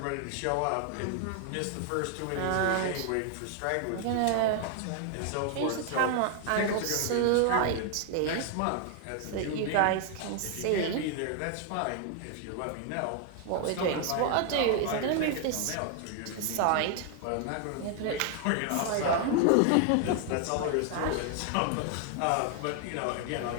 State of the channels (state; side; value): different; both; correlation 0.00